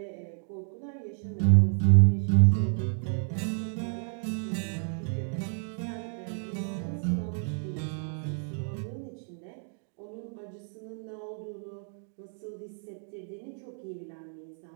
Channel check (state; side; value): silent; left; 56 dB below the other